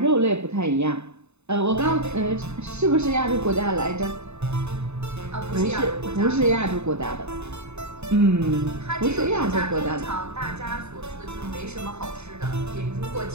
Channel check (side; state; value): left; late; 0.81 ms